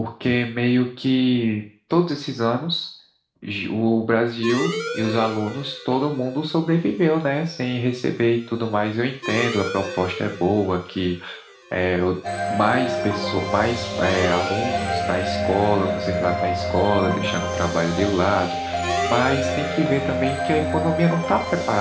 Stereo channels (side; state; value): both; identical; correlation 1.00